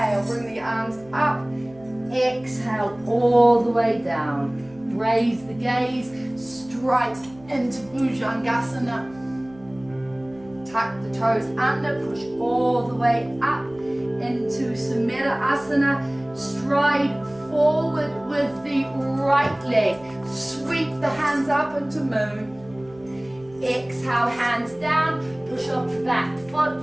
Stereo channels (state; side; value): noise; right; hum, 24 dB below the sound